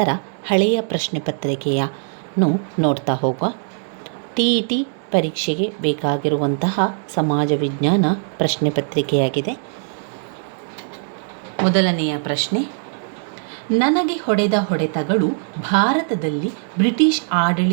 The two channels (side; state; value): left; silent; 65 dB below the other